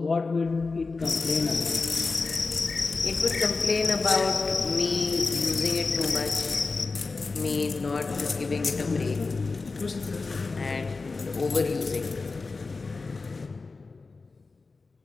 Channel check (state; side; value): quieter; right; 4.0 dB